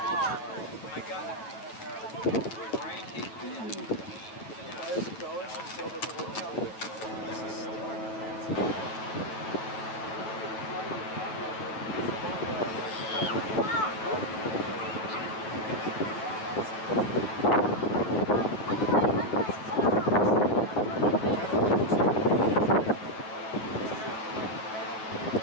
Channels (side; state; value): right; late; 9.2 ms